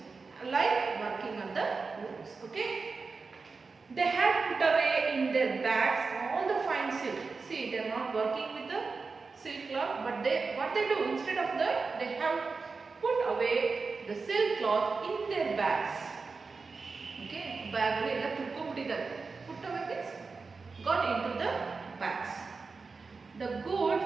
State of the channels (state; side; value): quieter; left; 4.4 dB